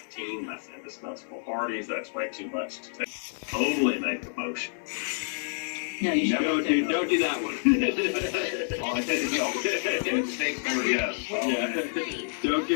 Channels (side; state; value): right; silent; 56 dB below the other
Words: that's indispensable parties, that's way too much to only make a motion. No, you don't do that one. Don't